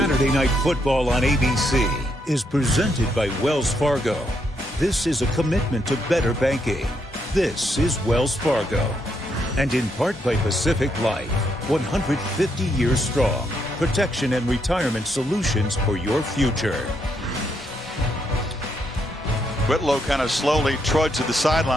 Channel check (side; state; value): both; normal; correlation 0.77